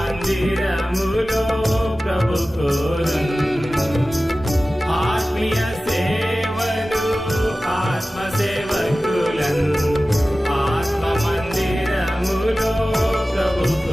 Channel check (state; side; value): normal; both; correlation 0.96